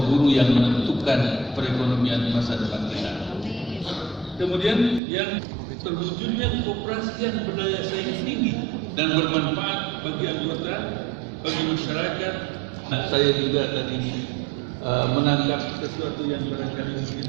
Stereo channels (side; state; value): left; drops out; at 5.0 s